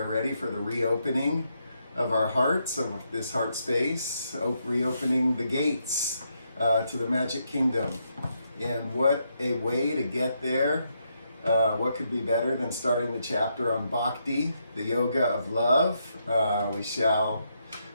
ready for the reopening of our hearts, of this heart space, reopening the gates to the Magic Kingdom. And what a way to get there. What could be better than starting the chapter on Bhakti, the yoga of love. We shall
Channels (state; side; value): inverted; both; correlation -0.79